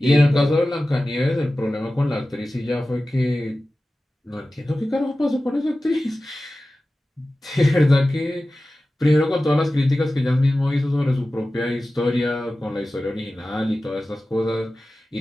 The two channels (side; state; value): both; normal; correlation 0.95